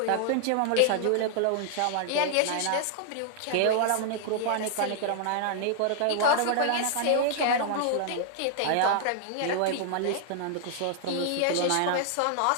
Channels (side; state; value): both; different; correlation -0.01